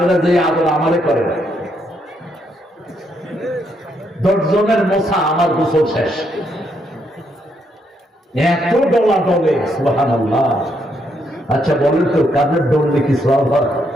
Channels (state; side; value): normal; both; correlation 0.76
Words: যে আদর আমারে করেন। 10 জনের মোছা আমার গোসল শেষ। এত ডলা ডলে, সুবহানাল্লাহ। আচ্ছা বলেন তো কাদের ডললে কি সওয়াব হয়?